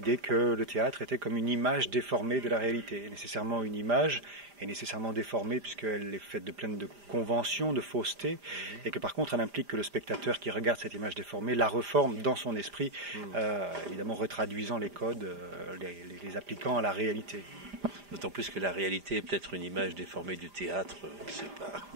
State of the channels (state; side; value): late; left; 5.0 ms